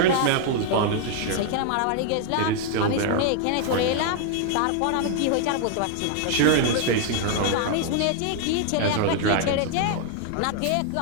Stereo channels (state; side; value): different; both; correlation 0.00